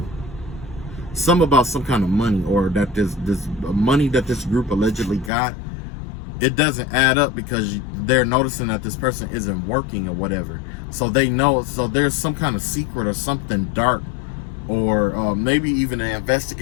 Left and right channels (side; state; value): right; drops out; at 5.3 s